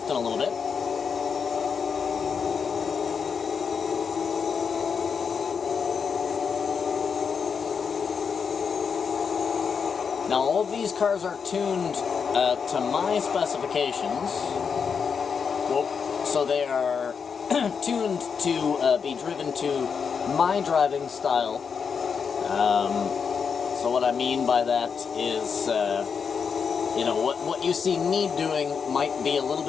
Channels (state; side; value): quieter; right; 6.2 dB